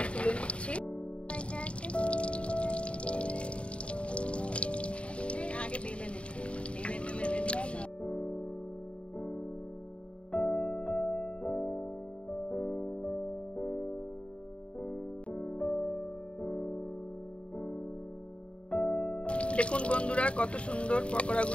তুলে নিচ্ছি। আগে বেলে নেব, দেখুন বন্ধুরা কত সুন্দর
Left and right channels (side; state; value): right; late; 0.060 ms